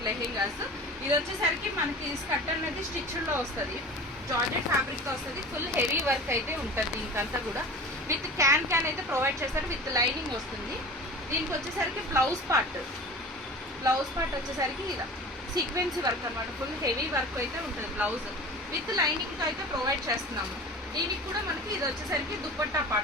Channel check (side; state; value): both; normal; correlation 0.37